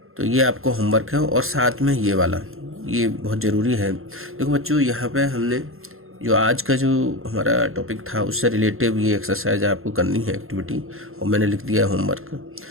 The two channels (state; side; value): late; left; 0.61 ms